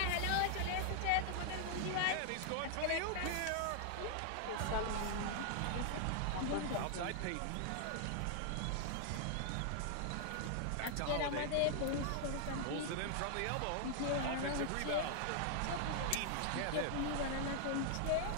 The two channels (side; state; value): both; different; correlation 0.00